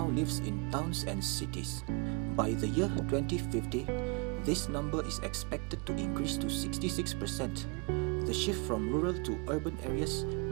lives in towns and cities. By the year 2050, this number is expected to increase to 66%. The shift from rural to urban areas,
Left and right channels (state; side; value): quieter; left; 31.9 dB